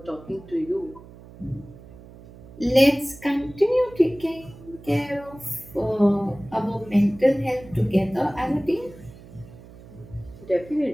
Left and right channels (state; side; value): noise; right; hum, 19 dB below the sound